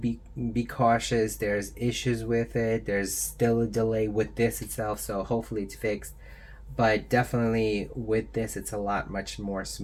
cautious. There's issues with it. There's still a delay with this itself, so hopefully it's fixed. But definitely with this, it's a lot much more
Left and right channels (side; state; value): both; identical; correlation 1.00